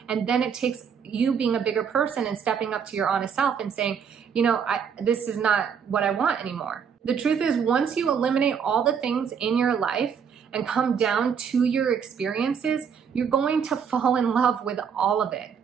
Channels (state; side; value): quieter; left; 7.0 dB